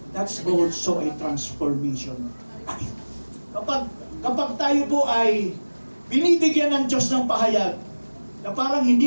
That's also a transformation. Kapag tayo po ay binibigyan ng Diyos ng pahayag na parang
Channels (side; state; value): both; inverted; correlation -1.00